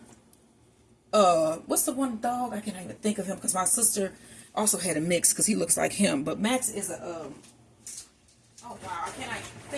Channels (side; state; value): both; identical; correlation 1.00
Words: What's the one dog? I can't even think of him because my sister also had a mix because he looks like him. But Max is a oh wow, I can't even